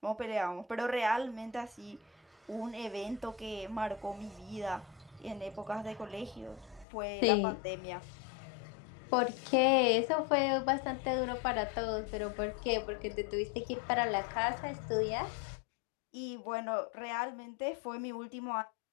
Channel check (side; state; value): right; drops out; at 6.9 s